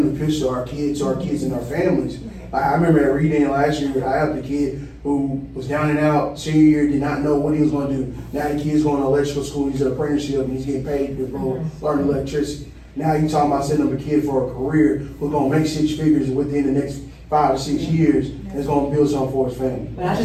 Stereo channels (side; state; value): both; identical; correlation 1.00